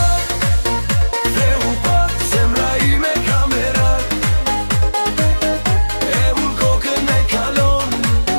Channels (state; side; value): inverted; both; correlation -1.00